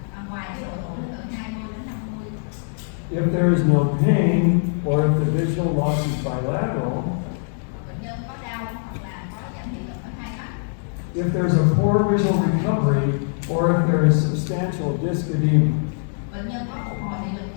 ngoài cái độ tuổi từ 20 đến 50. If there is no pain, or if the visual loss is bilateral, Bệnh nhân có đau hoặc là có giảm thị lực ở hai mắt. if there's a poor visual recovery, or if there is substantial disc edema. Bệnh nhân có phục hồi thị lực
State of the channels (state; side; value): silent; right; digital silence